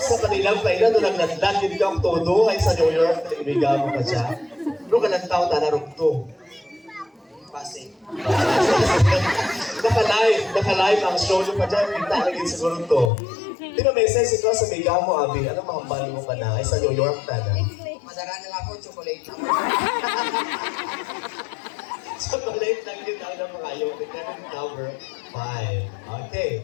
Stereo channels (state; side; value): drops out; right; at 13.1 s